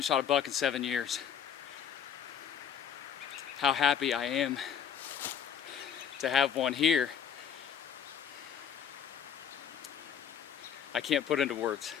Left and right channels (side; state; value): right; quieter; 8.2 dB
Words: shot a buck in 7 years. How happy I am to have one here. I can't put into words.